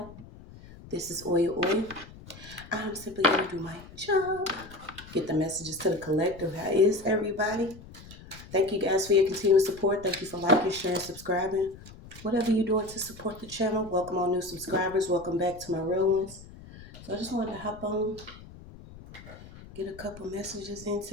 This is OYAOY. I'm simply going to do my job, get the messages to the collective. How is everybody? Thank you guys for your continued support. Thank you for liking, sharing, subscribing. Whatever you're doing to support the channel, welcome all new subscribers. Welcome back to my real ones. So I just wanted to hop on, get a couple messages in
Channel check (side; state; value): left; noise; rumble, 18 dB below the sound